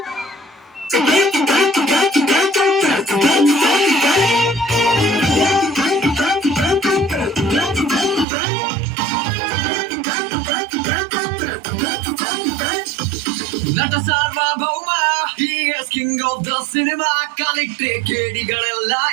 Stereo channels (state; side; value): drops out; left; at 8.2 s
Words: ನಟ ಸಾರ್ವಭೌಮ, he is king of the cinema. ಕಲಿಕ್ಟ್ರೆ ಕೇಡಿಗಳೆಲ್ಲ